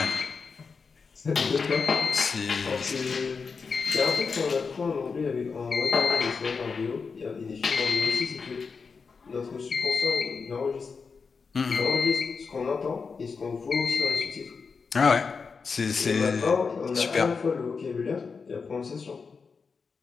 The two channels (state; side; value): quieter; right; 5.1 dB